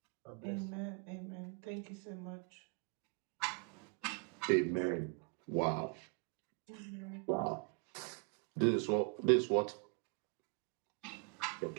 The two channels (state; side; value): quieter; left; 37.2 dB